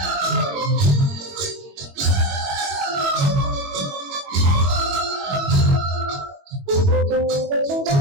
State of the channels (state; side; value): late; left; 22 ms